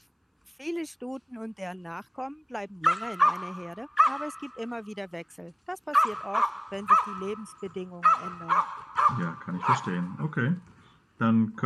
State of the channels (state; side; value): identical; both; correlation 1.00